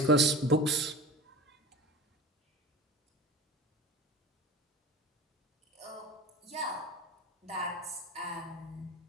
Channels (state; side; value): normal; both; correlation 0.34